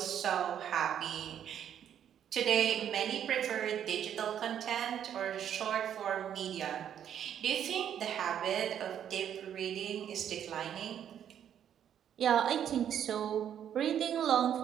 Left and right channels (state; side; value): quieter; left; 9.5 dB